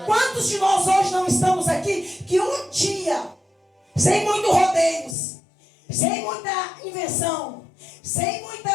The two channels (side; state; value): right; drops out; at 5.2 s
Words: Quantos de nós hoje não estamos aqui que um dia, sem muito rodeios, sem muita invenção, sem